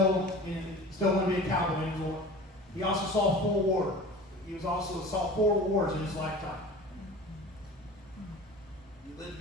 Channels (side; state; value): both; normal; correlation 0.38